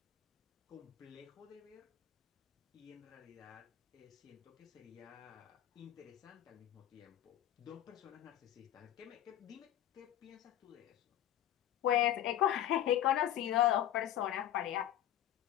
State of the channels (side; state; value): right; quieter; 12.1 dB